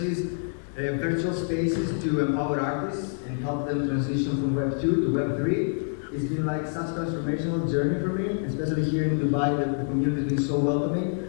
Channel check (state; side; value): silent; right; digital silence